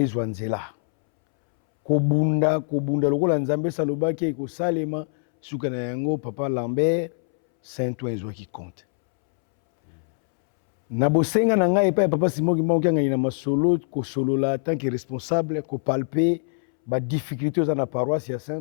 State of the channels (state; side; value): silent; right; 63 dB below the other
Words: nzela kobunda lokola nzambe salobaki ekosalema suka na yango papa Lambert Saint-Ouen ezwaki compte. Na bosenga na ngai pa ya papa Simo Kimbangu Kiangani na masolo kosolola tant que responsable kopalpe ba difficulté oza na paroisse ya